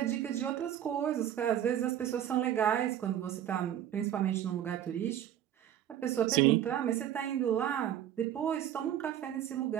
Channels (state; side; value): quieter; left; 10.8 dB